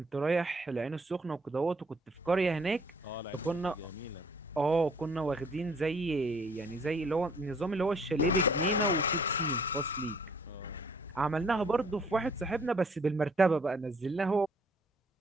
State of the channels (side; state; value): both; normal; correlation 0.60